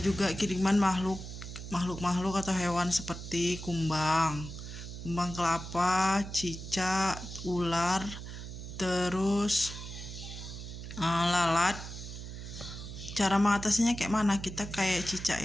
juga kiriman makhluk atau hewan seperti kumbang kelapa, cicak, ular, terus lalat. Cara mengatasinya kayak mana? Kita kayak cicak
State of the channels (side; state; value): right; noise; hum, 10 dB below the sound